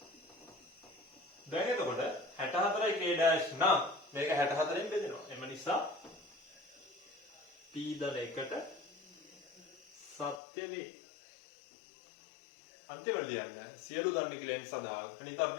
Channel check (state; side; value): drops out; right; at 10.4 s